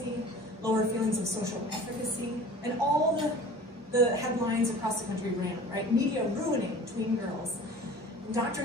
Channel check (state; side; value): normal; both; correlation 0.43